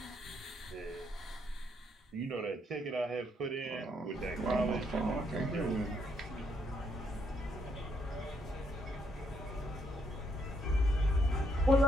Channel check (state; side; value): normal; both; correlation 0.74